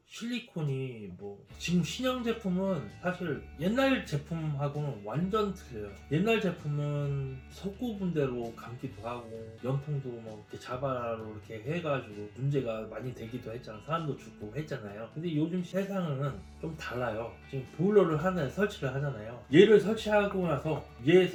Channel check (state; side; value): identical; both; correlation 1.00